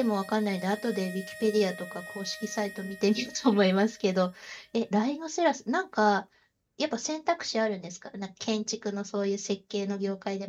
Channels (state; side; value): identical; both; correlation 1.00